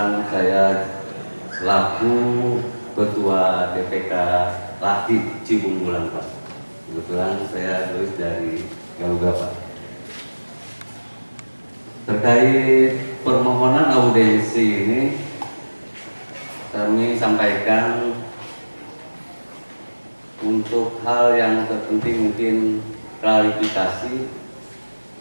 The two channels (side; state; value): both; inverted; correlation -1.00